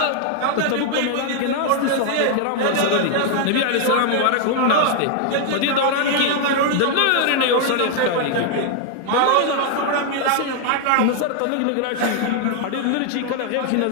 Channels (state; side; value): different; both; correlation 0.00